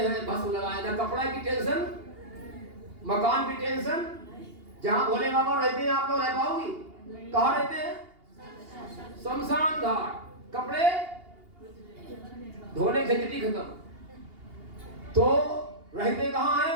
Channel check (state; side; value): late; left; 2.8 ms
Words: भस्म लगाए, ना कपड़ा की टेंशन, मकान की टेंशन। जहां भोले बाबा रहते हैं आप लोग रह पाओगी? कहां रहते हैं? शमशान घाट। कपड़े धोने झंझटी खत्म। तो रहते कहां है?